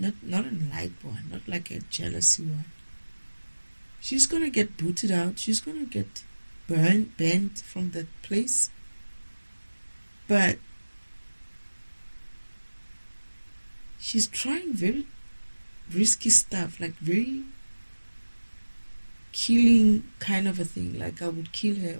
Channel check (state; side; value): inverted; both; correlation -1.00